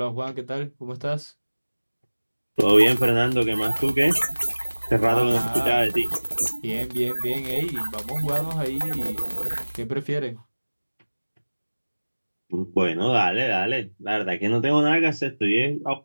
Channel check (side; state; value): both; inverted; correlation -1.00